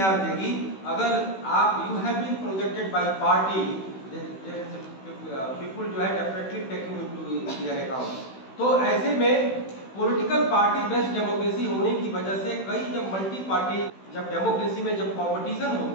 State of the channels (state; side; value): late; right; 16 ms